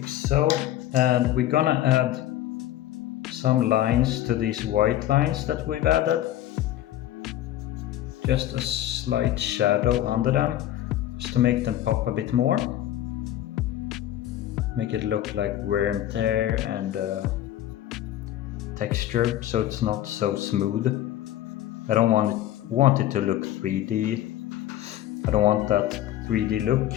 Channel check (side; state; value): right; quieter; 12.9 dB